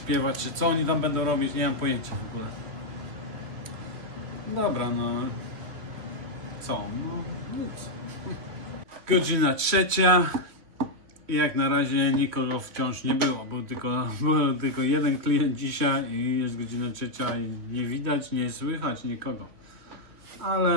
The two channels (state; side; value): late; left; 3.1 ms